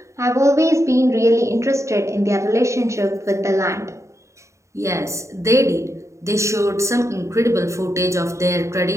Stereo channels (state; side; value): late; left; 0.14 ms